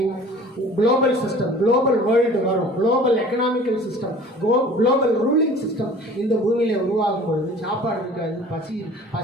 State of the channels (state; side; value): normal; both; correlation 0.46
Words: குளோபல் சிஸ்டம், குளோபல் வேர்ல்டு வரும். Global economical system, global ruling system இந்த பூமியில் உருவாகும் பொழுது சாப்பாடு இருக்காது,